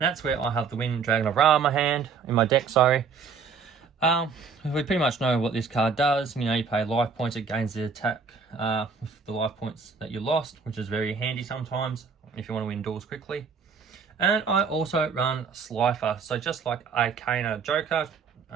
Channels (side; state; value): left; quieter; 5.5 dB